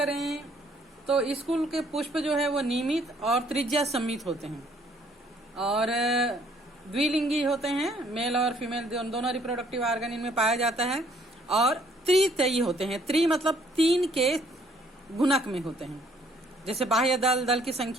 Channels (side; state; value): both; normal; correlation 0.64